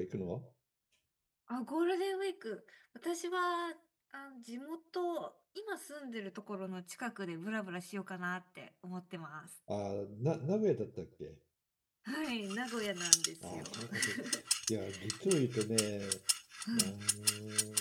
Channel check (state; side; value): identical; both; correlation 1.00